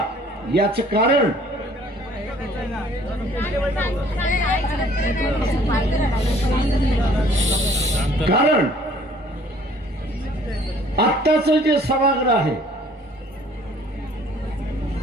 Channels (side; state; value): both; normal; correlation 0.56